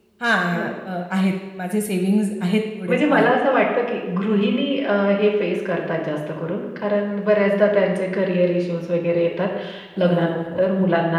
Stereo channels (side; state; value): both; identical; correlation 1.00